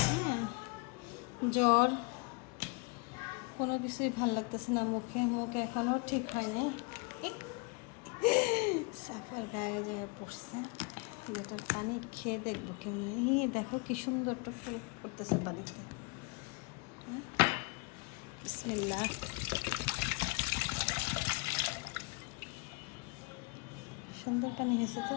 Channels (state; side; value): quieter; right; 29.7 dB